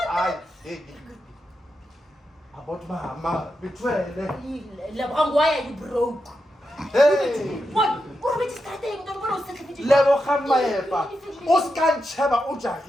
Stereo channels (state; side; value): normal; both; correlation 0.87